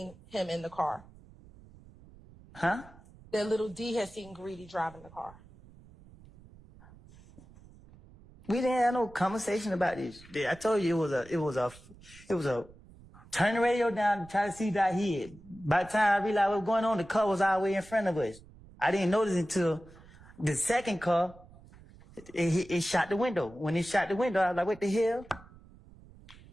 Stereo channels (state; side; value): noise; right; rumble, 22 dB below the sound